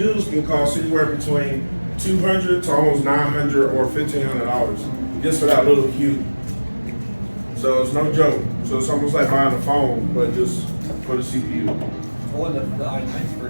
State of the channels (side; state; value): both; inverted; correlation -1.00